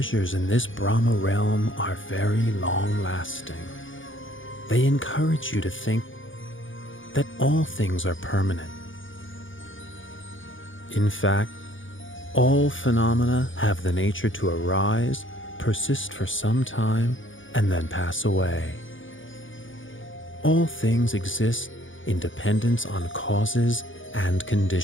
in this Brahma realm are very long-lasting. They encourage you to think that all things are permanent. In fact, all phenomena have the nature to arise, persist for some time, and then pass away. All things exist in dependence on causes and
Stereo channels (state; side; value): late; right; 0.57 ms